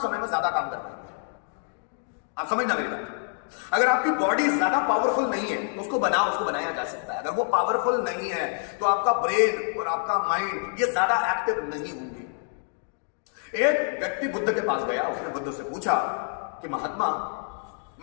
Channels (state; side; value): silent; right; 60 dB below the other